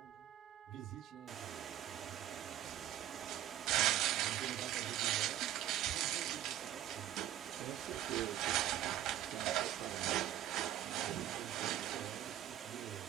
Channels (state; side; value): quieter; left; 12.2 dB